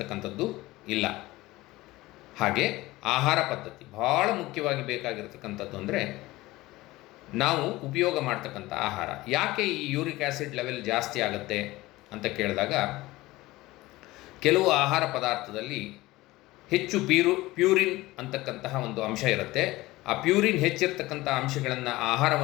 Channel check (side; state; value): right; quieter; 19.0 dB